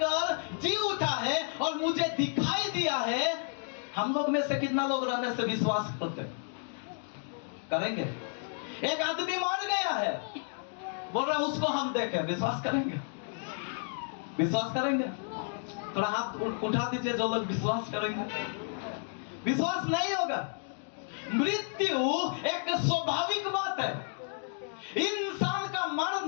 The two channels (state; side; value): silent; right; 57 dB below the other